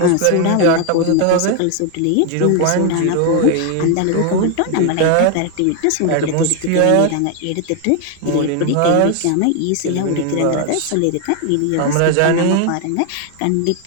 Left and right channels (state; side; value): different; both; correlation 0.01